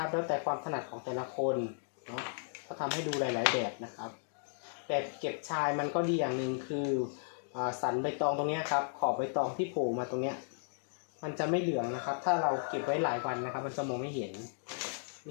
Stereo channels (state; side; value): silent; right; digital silence